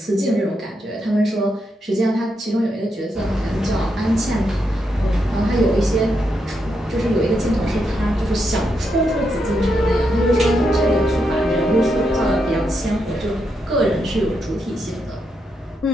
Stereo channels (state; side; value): normal; both; correlation 0.82